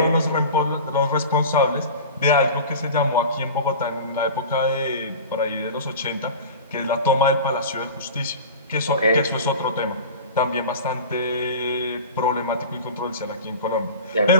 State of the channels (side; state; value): both; inverted; correlation -0.34